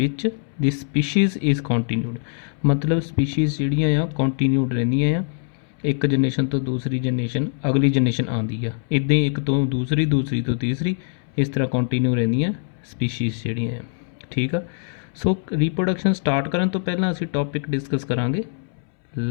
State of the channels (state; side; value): silent; right; 64 dB below the other